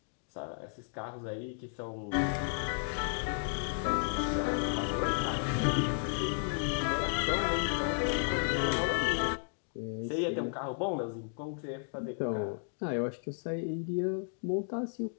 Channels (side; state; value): right; silent; digital silence